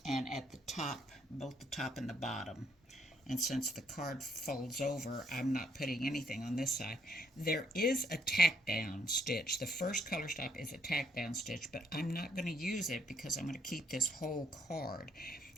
and at the top, both the top and the bottom. And since the card folds over, I'm not putting anything on this side. There is a tack down stitch. The first color stop is a tack down stitch, but I'm not going to use it because I'm going to keep this whole card.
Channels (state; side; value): normal; both; correlation 0.69